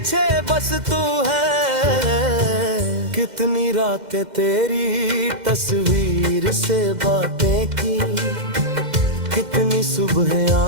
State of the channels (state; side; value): late; left; 2.1 ms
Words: बस तू है। कितनी रातें तेरी तस्वीर से बातें की, कितनी सुबह